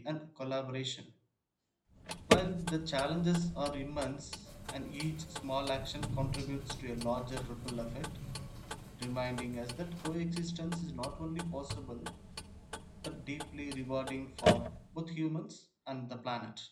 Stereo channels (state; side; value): identical; both; correlation 1.00